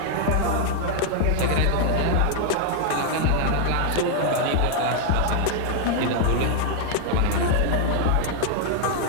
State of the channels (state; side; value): different; both; correlation 0.00